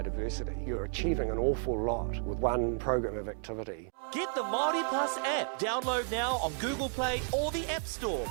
You're achieving an awful lot with one program of activity. Get the Māori Plus app. Download now on Google Play or the App Store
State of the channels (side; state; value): left; silent; 56 dB below the other